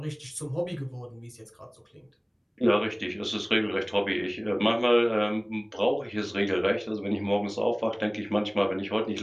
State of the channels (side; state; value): both; identical; correlation 1.00